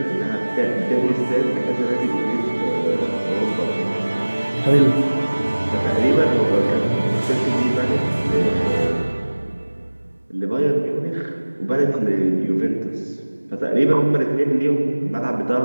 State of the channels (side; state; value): both; inverted; correlation -1.00